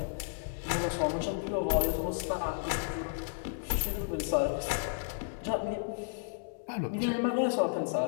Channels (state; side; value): silent; right; digital silence